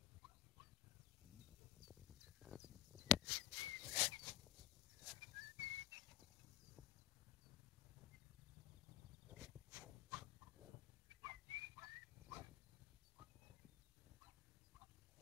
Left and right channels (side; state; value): right; quieter; 14.2 dB